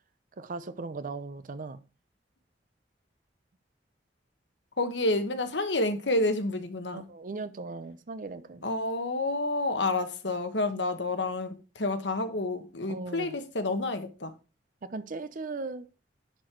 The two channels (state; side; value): normal; both; correlation -0.14